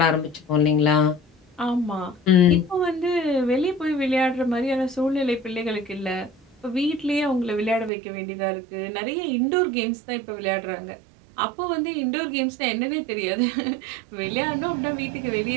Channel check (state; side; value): drops out; left; at 7.9 s